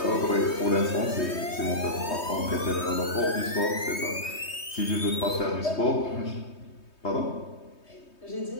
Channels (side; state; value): right; late; 3.2 ms